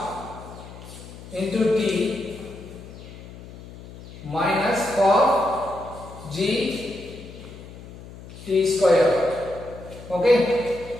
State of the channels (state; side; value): noise; left; hum, 15 dB below the sound